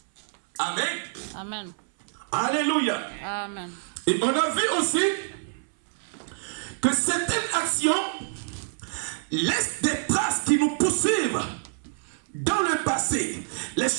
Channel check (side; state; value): left; silent; 59 dB below the other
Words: Amen. Amen. Alléluia. Amen. Et on a vu aussi que certaines actions laissent des traces qui nous poursuivent dans le passé. Les